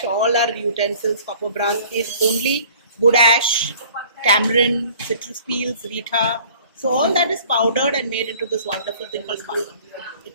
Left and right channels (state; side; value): inverted; both; correlation -0.52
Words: all our utensils. Copper brass is only wood ash, tamarind, citrus peels, rita. So all that is powdered and made into this wonderful thing called sparkle.